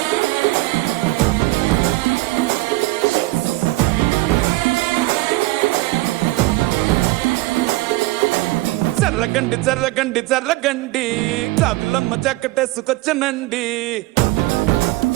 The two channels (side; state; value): left; quieter; 19.9 dB